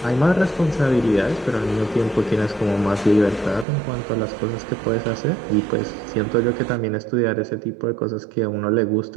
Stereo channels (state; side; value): drops out; left; at 3.7 s